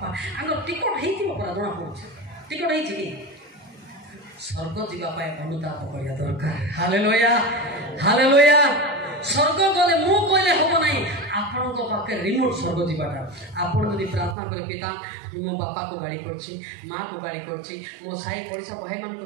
आंग टिकट हेतिबो परा जणा पड़छ टिकट हेछि की स्वर्ग जीवा पाए अनुताप करिया दरकार हालेलुया हालेलुया स्वर्ग गले मु कहले होबो नाही आपण को पाके रिमोट स्वर्ग जीवाटा आपण यदि प्रार्थना करे पिता मो बापा को गाड़ी करछि मां को गाड़ी करछि मो साई पड़ोसा भाई मन को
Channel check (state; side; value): drops out; left; at 14.4 s